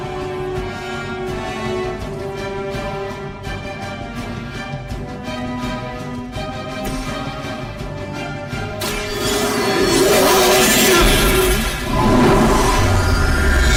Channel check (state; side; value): identical; both; correlation 1.00